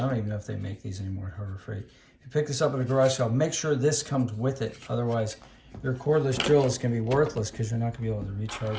even know if they make these anymore at Harbor Freight. If you pick this up at a garage sale, make sure this comes with it. Otherwise, your cordless drill is going to be worthless because you're not going to be able to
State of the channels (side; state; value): both; identical; correlation 1.00